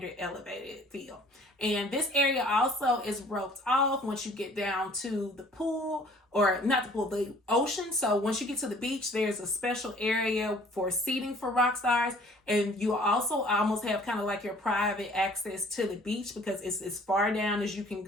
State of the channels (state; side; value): normal; both; correlation 0.54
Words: elevated feel. And this area also is roped off once you get down to the pool, or not the pool, the ocean. So once you get to the beach, there's a special area for seating for rock stars. And you also almost have kind of like your private access to the beach because it's as far down as you can